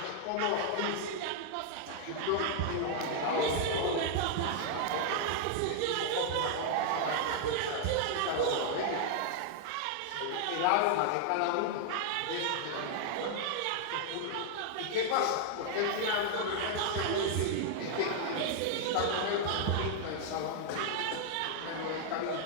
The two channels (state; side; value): different; both; correlation -0.01